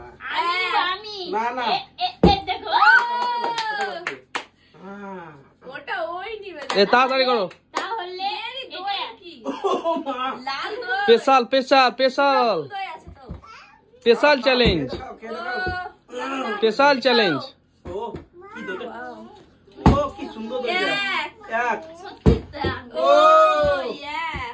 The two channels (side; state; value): both; identical; correlation 1.00